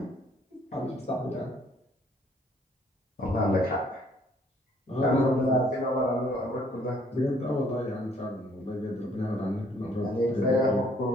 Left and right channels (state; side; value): normal; both; correlation 0.63